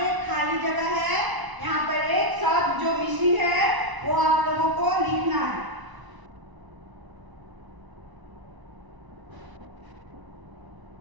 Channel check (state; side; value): late; left; 1.0 ms